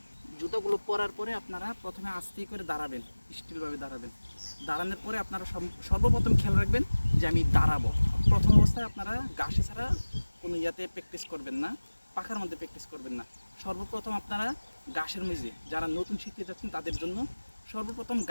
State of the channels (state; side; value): inverted; both; correlation -1.00